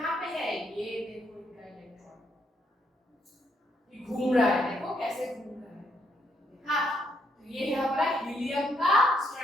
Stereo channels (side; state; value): both; normal; correlation 0.74